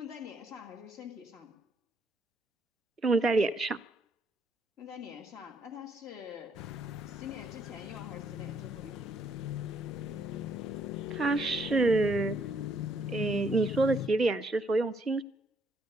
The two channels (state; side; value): normal; both; correlation 0.70